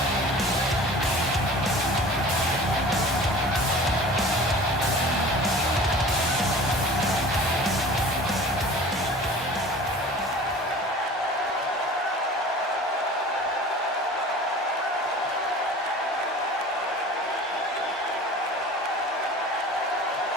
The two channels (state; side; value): normal; both; correlation 0.42